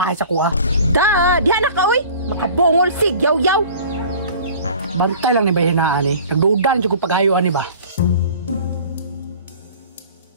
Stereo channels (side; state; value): both; inverted; correlation -0.45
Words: sa kuha. Da, diha na ka uy. Makabungol sig, yaw-yaw. Bantay lang ni bayhanaan eh. Nagduda na kung paghayuan ni ba?